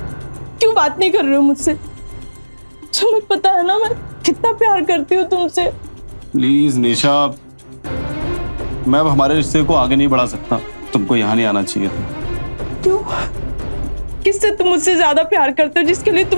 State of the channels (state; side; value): inverted; both; correlation -1.00